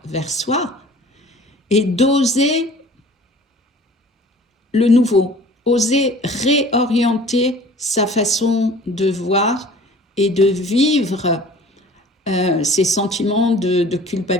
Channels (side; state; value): both; normal; correlation 0.47